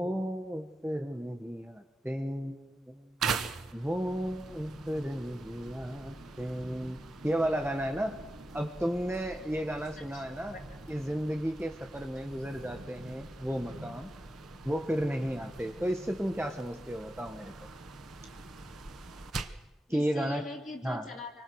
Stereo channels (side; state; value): both; normal; correlation 0.89